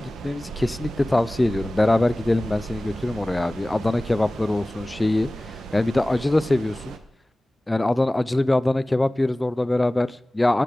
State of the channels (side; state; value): both; normal; correlation 0.98